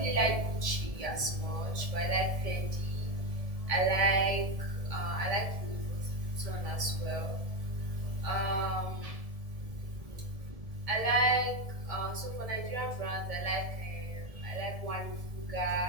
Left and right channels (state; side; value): late; left; 1.7 ms